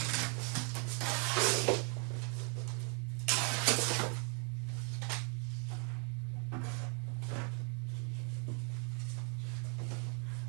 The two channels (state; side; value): quieter; left; 37.7 dB